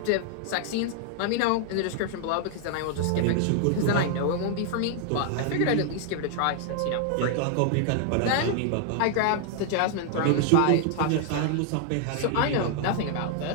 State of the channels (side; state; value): both; different; correlation 0.00